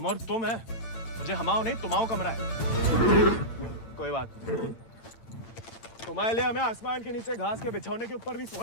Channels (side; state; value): right; late; 8.9 ms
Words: और तुम है। मुझे हमाओ नहीं, तुम्हाओ कमरा है। कोई बात नहीं, तुम्हारे लिए हमें आसमान के नीचे घास के बिछौने के ऊपर भी